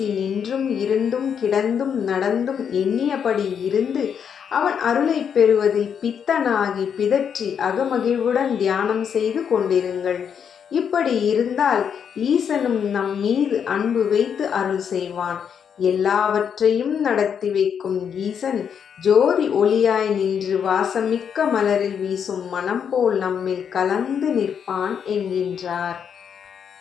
நின்றும் இருந்தும் கிடந்தும் நடந்தும் எண்ணியபடி இருந்து அவன் அருளை பெறுவதில் பித்தனாகி பிதற்றி அகமகிழ்வுடன் தியானம் செய்து கொண்டிருங்கள். இப்படி இருந்தால் ஈசனும் நம் மீது அன்பு வைத்து அருள் செய்வான். எல்லாவற்றையும் நடத்தி வைக்கும் ஈசன் ஜோதி ஒளியாய் நின்று வாசமிக்க மலரில் வீசும் மனம் போல் நம்மில் கலந்து நிற்பான் என்கின்றார்.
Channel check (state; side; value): quieter; right; 7.6 dB